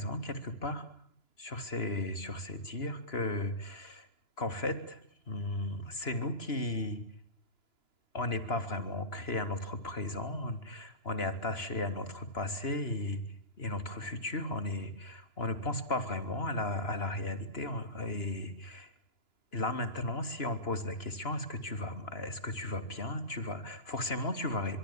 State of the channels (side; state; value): right; late; 2.9 ms